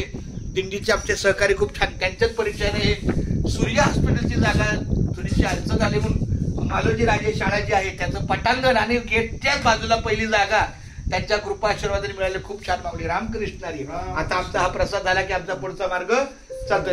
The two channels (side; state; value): both; identical; correlation 1.00